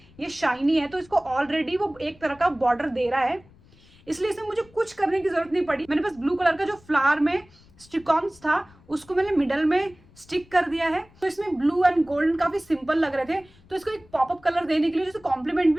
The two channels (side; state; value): left; noise; rumble, 27 dB below the sound